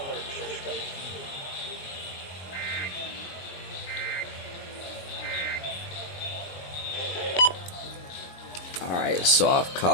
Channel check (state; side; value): late; right; 22 ms